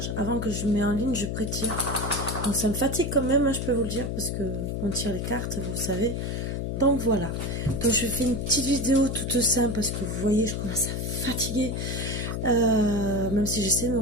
avant que je mets en ligne, je pré-tire. Donc ça me fatigue quand même, hein, je peux vous le dire, parce que on tire les cartes, vous le savez. Donc voilà, donc je fais une petite vidéo toute simple, parce que vous voyez, je commence à fatiguer. Même si j'essaie de me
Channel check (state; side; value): noise; left; hum, 2 dB below the sound